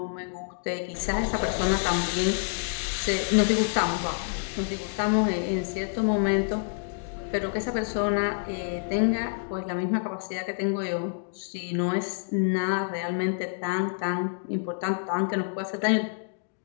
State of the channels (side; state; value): right; silent; digital silence